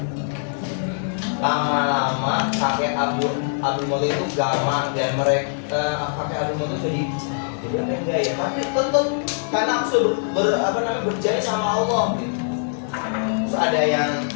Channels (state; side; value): silent; right; digital silence